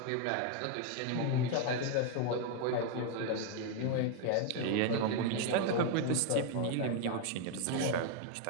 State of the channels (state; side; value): different; both; correlation 0.01